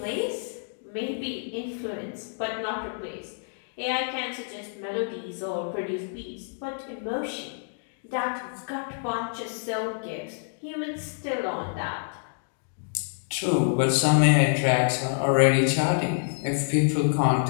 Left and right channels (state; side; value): silent; right; digital silence